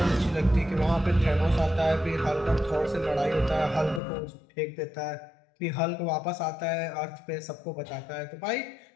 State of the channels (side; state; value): right; drops out; at 4.0 s